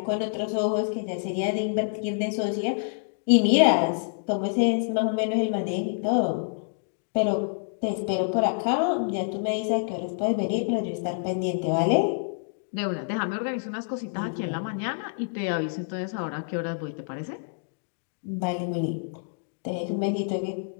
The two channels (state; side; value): silent; right; digital silence